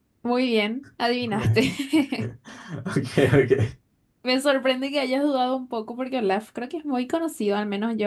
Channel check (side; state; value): both; identical; correlation 1.00